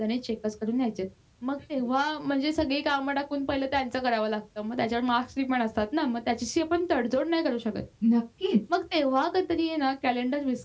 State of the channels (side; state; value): both; identical; correlation 1.00